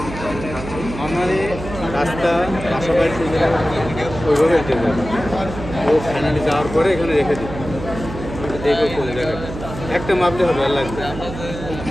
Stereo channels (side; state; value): right; noise; hum, 10 dB below the sound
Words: নর্মালি রাস্তা বাসা বাড়ি ওইভাবে হেঁটে যাবে। ও ফাইনালি যাওয়ার পরে এখানে রেখে দিই, দেখে চলে যাবে, একটা মাপলে হবে আর লাগবে।